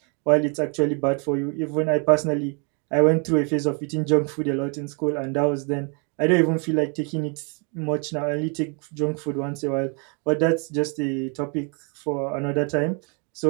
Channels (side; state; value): left; quieter; 36.7 dB